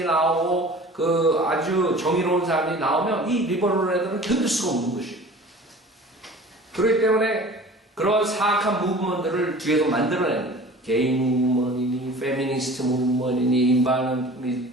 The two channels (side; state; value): both; normal; correlation 0.43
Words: 나오고 그 아주 정의로운 사람들이 나오면 이 리버럴 애들은 견딜 수가 없는 것이에요. 그렇기 때문에 그런 사악한 무브먼트를 뒤에서 만들어내는 거예요. 게이 무브먼트니 페미니스트 무브먼트니